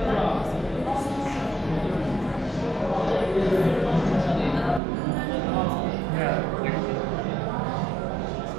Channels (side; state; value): left; drops out; at 4.8 s